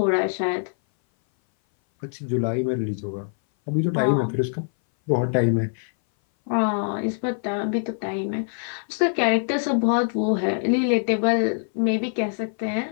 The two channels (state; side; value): silent; right; 59 dB below the other